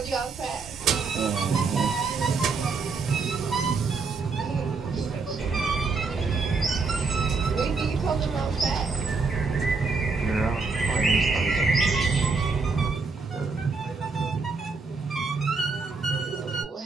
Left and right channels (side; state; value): left; quieter; 4.4 dB